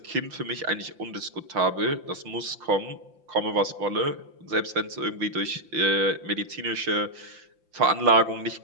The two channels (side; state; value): left; late; 5.8 ms